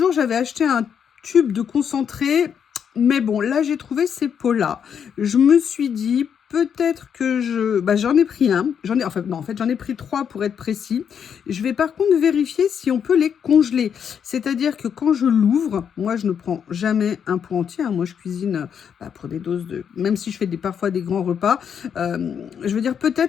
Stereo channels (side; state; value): right; quieter; 7.7 dB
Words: j'avais acheté un tube de concentré. Mais bon, là, j'ai trouvé ces pots-là. Je me suis dit, peut-être que j'en ai pris un. J'en ai pris 3 pour être précis. Je vais par contre vérifier si on peut les congeler. C'est-à-dire que quand je l'ouvre, moi, je ne prends jamais un pot entier, hein. Moi, je cuisine pour des doses de... Même si je fais parfois des grands repas. Je veux dire,